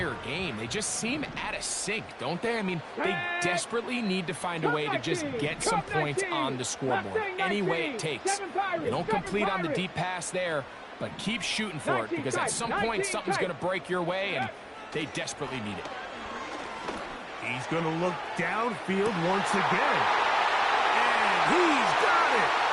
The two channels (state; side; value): identical; both; correlation 1.00